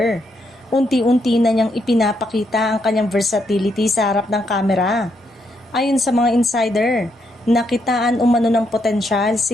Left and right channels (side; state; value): both; normal; correlation 0.77